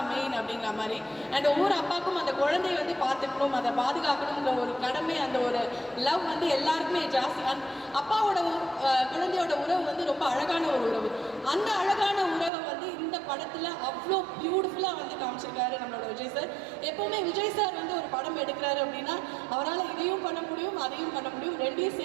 மெயின் அப்படிங்கிற மாதிரி. அண்ட் ஒவ்வொரு அப்பாவுக்கும் அந்த குழந்தைய வந்து பார்த்துக்கணும், அதை பாதுகாக்கணுங்கிற ஒரு கடமை, அந்த ஒரு லவ் வந்து எல்லாருக்குமே ஜாஸ்தி. அப்பாவோட குழந்தையோட உறவு வந்து ரொம்ப அழகான ஒரு உறவு. அந்த அழகான உறவை வந்து இந்த படத்தில் அவ்வளோ பியூட்டிஃபுல்லாக வந்து காமிச்சிருக்காரு நம்மளோட விஜய் சார். எப்போவுமே விஜய் சார் வந்து ஒரு படம் எடுக்கிறாரு அப்படின்னா அவரால் இதையும் பண்ண முடியும், அதையும் பண்ண முடியும், ரெண்டையும்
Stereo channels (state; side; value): drops out; left; at 12.5 s